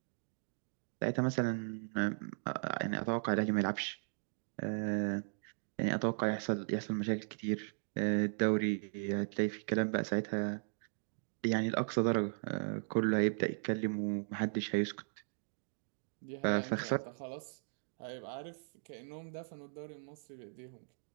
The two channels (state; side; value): silent; left; digital silence